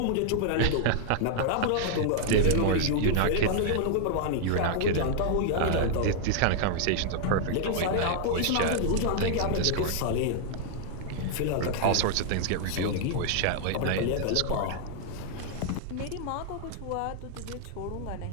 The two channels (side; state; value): both; different; correlation 0.00